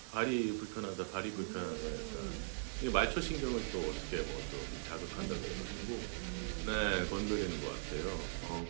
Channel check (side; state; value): left; silent; digital silence